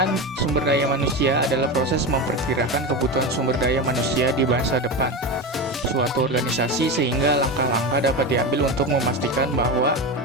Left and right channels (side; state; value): both; normal; correlation 0.20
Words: sumber daya manusia adalah proses memperkirakan kebutuhan sumber daya manusia di masa depan suatu organisasi sehingga langkah-langkah dapat diambil untuk memastikan bahwa